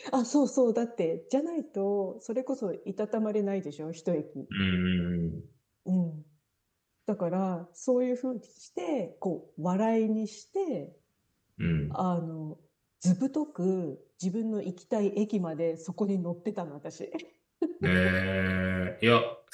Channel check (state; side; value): identical; both; correlation 1.00